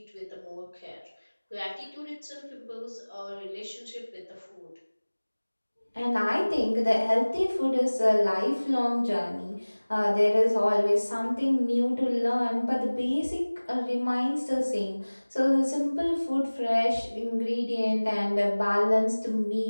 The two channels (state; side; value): inverted; both; correlation -1.00